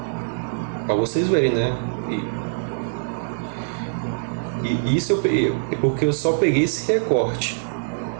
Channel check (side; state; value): left; silent; digital silence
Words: Para vocês verem, né? E isso é porque eu só peguei esse recorte